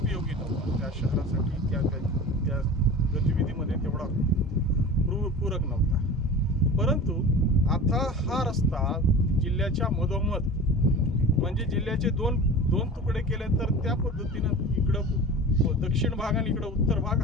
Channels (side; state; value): both; normal; correlation 0.35